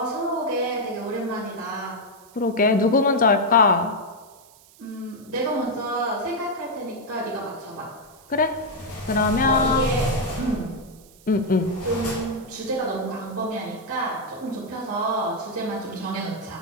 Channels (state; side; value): noise; right; hiss, 25 dB below the sound